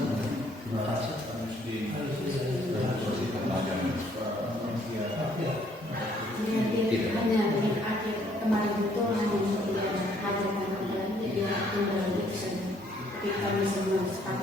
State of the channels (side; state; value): both; normal; correlation 0.65